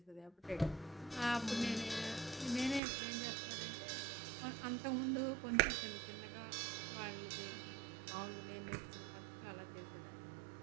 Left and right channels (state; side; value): drops out; left; at 2.8 s